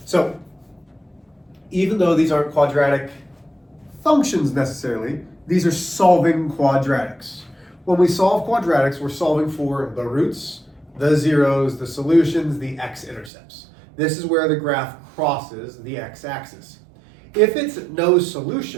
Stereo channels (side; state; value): left; drops out; at 13.3 s